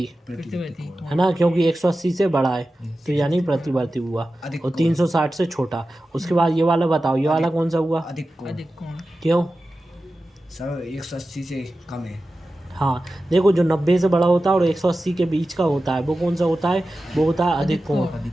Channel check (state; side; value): normal; both; correlation 0.94